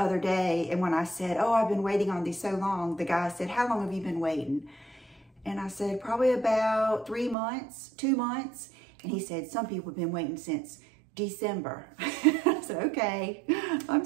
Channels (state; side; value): drops out; left; at 7.4 s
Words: day, and when I said, oh, I've been waiting on these so long, the guy said, how long have you been waiting? And I said, probably about 3 months, 2 months. And he said, some people have been waiting since December. I said, okay, I'm